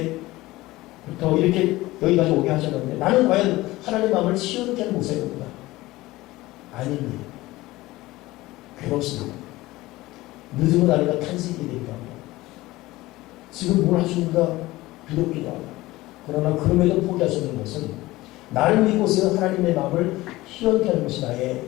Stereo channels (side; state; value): right; quieter; 18.7 dB